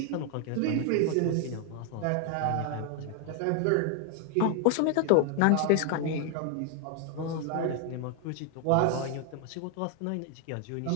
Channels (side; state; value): both; different; correlation 0.00